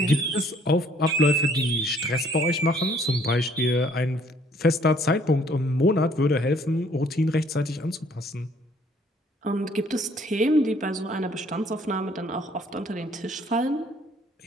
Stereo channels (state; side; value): normal; both; correlation 0.61